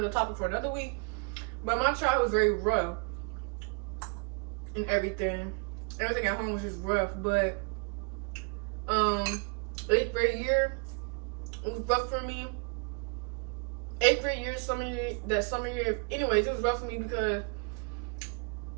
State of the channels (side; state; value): left; quieter; 35.6 dB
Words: topic for another week. But my childhood was very rough and everything. Everything at home was just rough. But 8th grade year was rough for me. 8th grade year, summer year. Anyways, it was rough for me because